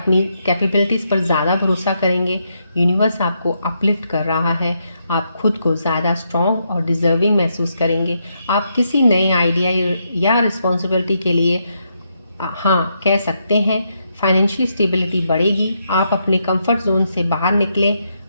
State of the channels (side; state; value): both; inverted; correlation -0.80